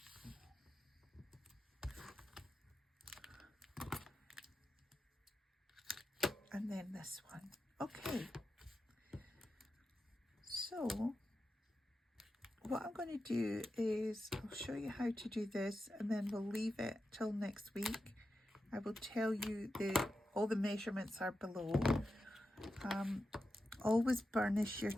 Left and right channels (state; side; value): normal; both; correlation 0.90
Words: And then this one. Okay. So what I'm going to do is I'll show you how to do this, and then we'll leave it till next week. I will tell you all the measurements are below. Always burnish your